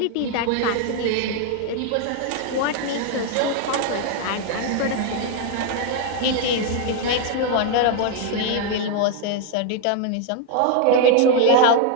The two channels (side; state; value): both; different; correlation 0.00